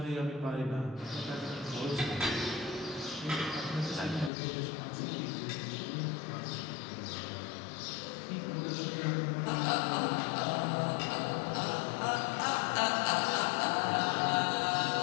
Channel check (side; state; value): right; drops out; at 4.3 s